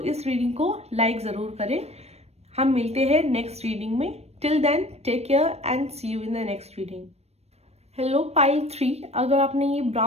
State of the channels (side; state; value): left; late; 0.31 ms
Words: इस रीडिंग को लाइक जरूर करें। हम मिलते हैं नेक्स्ट रीडिंग में। Till then take care and see you in the next reading. Hello pile 3, अगर आपने ये